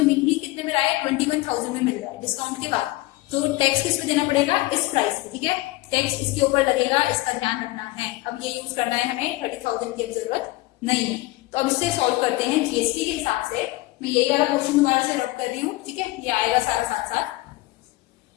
मिल ही कितने में रहा है, 21,000 में मिल रहा है डिस्काउंट के बाद। तो टैक्स किस पे देना पड़ेगा, इस प्राइस पे, ठीक है। टैक्स इसके ऊपर लगेगा, इसका ध्यान रखना है। अब ये यूज करना है हमें, 30,000 की जरूरत नहीं है। तो अब इससे सॉल्व करते हैं जीएसटी के हिसाब से। मैं यही वाला क्वेश्चन दोबारा से रब कर रही हूँ, ठीक है, ये आएगा सारा साथ साथ।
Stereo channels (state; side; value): quieter; right; 19.6 dB